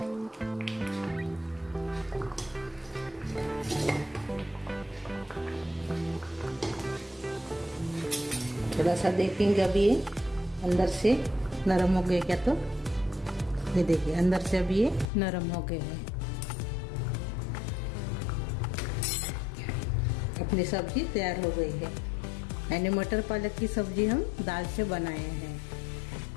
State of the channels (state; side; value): drops out; right; at 15.1 s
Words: थोड़ा सा देखेंगे अभी ये अंदर से नरम हो गए क्या, तो ये देखिए अंदर से अभी ये नरम हो गए हैं। अपनी सब्जी तैयार हो गई है। यानी मटर पालक की सब्जी हम दाल से बनाए हैं।